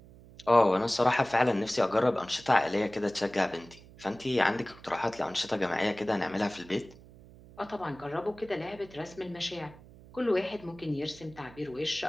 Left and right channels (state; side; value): noise; right; hum, 21 dB below the sound